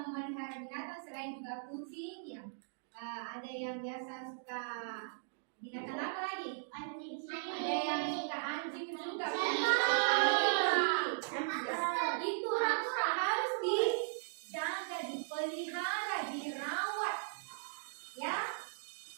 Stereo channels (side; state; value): left; silent; digital silence